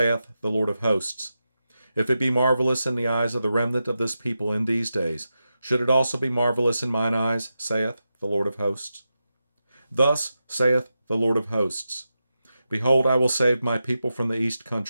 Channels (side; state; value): both; inverted; correlation -0.90